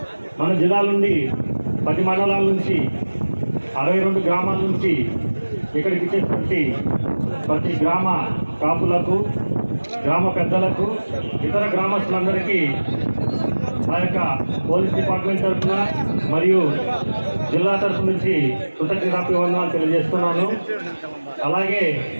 మన జిల్లా నుండి 10 మండలాల నుంచి 62 గ్రామాల నుంచి ఇక్కడికి ఇచ్చేటువంటి ప్రతి గ్రామ కాపులకు, గ్రామ పెద్దలకు, ఇతర గ్రామస్తులందరికీ మా యొక్క పోలీస్ డిపార్ట్మెంట్ తరఫున మరియు జిల్లా తరఫు నుంచి కృతజ్ఞతాభివందనాలు తెలియజేస్తున్నాను. అలాగే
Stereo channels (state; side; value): inverted; both; correlation -1.00